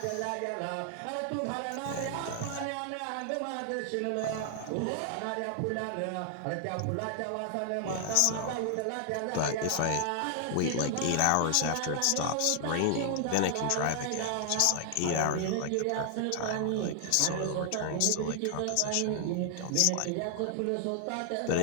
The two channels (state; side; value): different; both; correlation 0.00